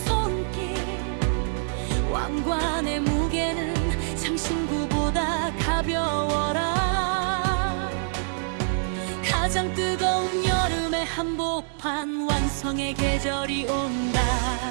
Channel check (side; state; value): left; silent; digital silence